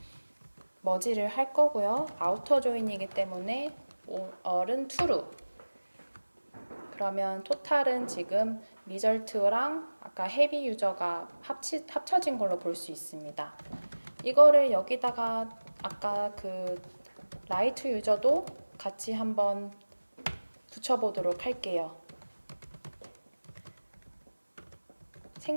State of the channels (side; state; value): both; inverted; correlation -1.00